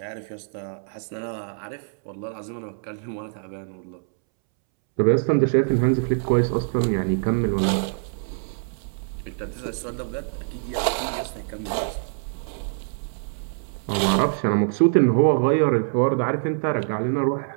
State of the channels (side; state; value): left; silent; 62 dB below the other